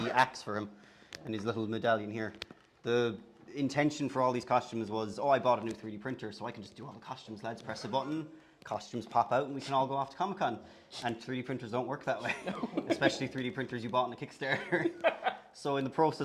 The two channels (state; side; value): identical; both; correlation 1.00